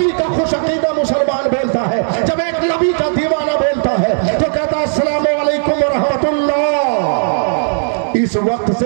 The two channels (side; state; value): left; silent; digital silence